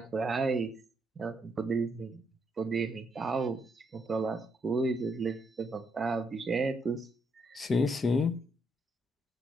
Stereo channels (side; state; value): both; normal; correlation 0.76